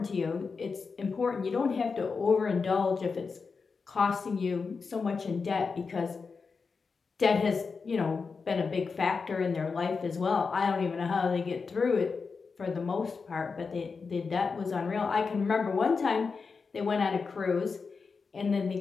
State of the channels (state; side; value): quieter; right; 4.9 dB